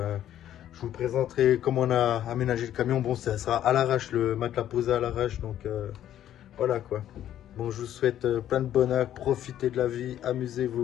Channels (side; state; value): right; quieter; 11.5 dB